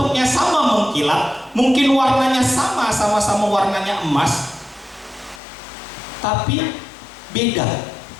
sama mengkilat, mungkin warnanya sama-sama warnanya emas, tapi beda.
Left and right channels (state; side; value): drops out; right; at 5.4 s